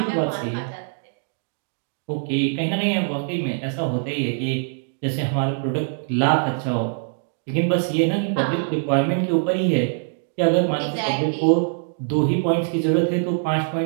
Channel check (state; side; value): silent; left; digital silence